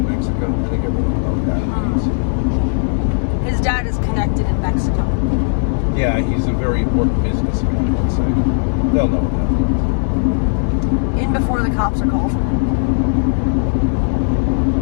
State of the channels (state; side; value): silent; right; digital silence